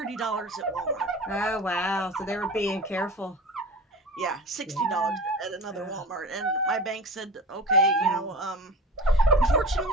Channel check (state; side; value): normal; both; correlation 0.35